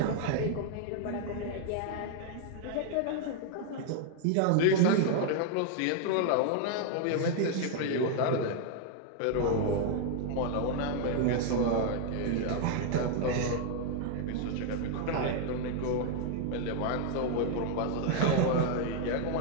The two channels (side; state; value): both; different; correlation 0.00